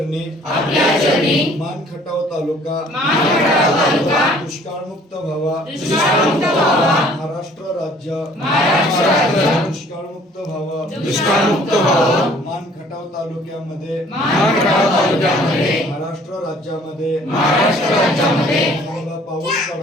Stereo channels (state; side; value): normal; both; correlation 0.56